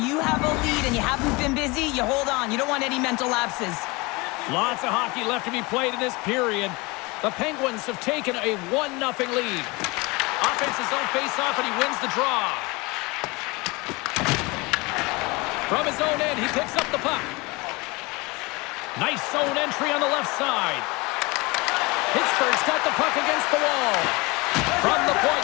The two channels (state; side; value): quieter; right; 25.2 dB